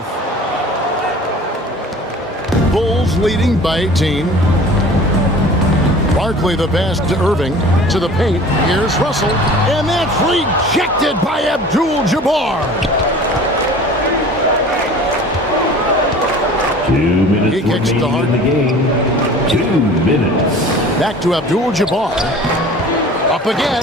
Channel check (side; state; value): both; normal; correlation 0.44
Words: Bulls leading by 18. Barkley the pass to Irving to the paint. Here's Russell, and that's rejected by ABDUL-JABBAR. 2 minutes He kicks to remaining in the game. 2 minutes. Back to ABDUL-JABBAR. Up